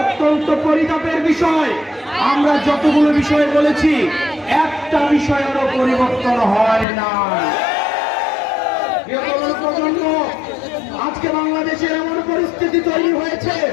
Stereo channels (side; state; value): right; drops out; at 6.9 s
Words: অত্যন্ত পরিতাপের বিষয়, আমরা যতগুলো বিষয় বলেছি একটা বিষয়েরও পরিবর্তন হয় না। প্রজন্ম আজকে বাংলাদেশের এমন পরিস্থিতি তৈরি